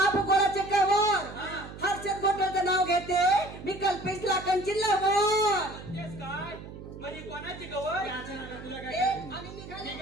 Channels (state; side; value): noise; right; hum, 13 dB below the sound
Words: भूगोलाचे कवर हर्षद गोटलचं नाव घेते मी कल्पेश लाखांची लवर. काय म्हणजे कोणाची गवळ तुला काय आणि निघाले